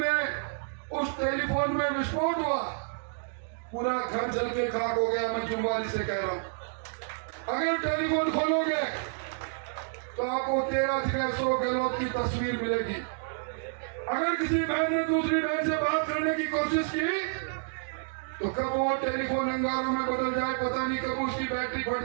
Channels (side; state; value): left; silent; digital silence